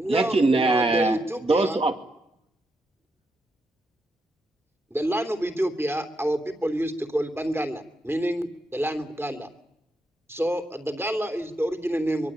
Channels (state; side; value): normal; both; correlation 0.82